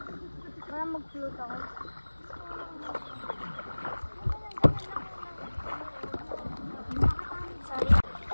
Para mag-float ako. Sorry.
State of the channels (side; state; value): both; inverted; correlation -1.00